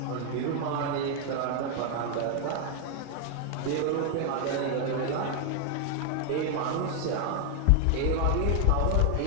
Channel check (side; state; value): both; different; correlation 0.00